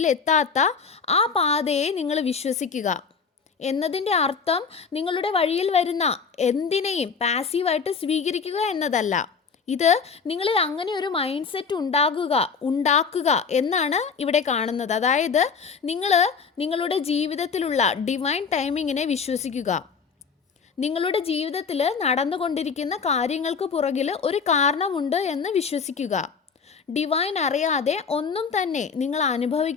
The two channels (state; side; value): quieter; right; 5.7 dB